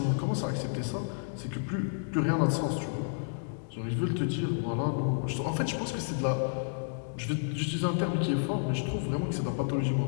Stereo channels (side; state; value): right; silent; digital silence